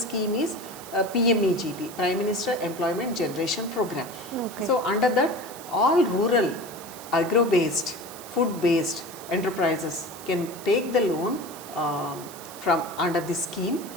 is PMEGP, Prime Minister Employment Generation Program. Okay. So under that, all rural, agro-based, food-based enterprises can take the loan from under this scheme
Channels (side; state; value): right; noise; hiss, 15 dB below the sound